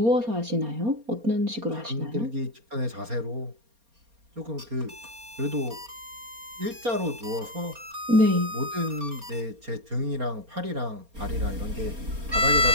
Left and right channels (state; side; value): late; left; 4.3 ms